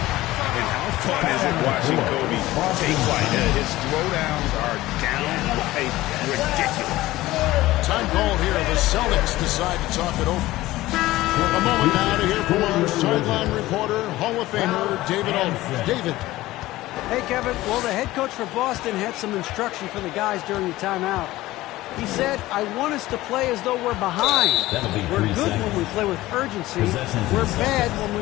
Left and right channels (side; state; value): right; quieter; 17.2 dB